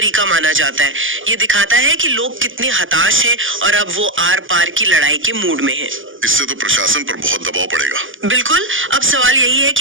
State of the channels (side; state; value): left; late; 0.58 ms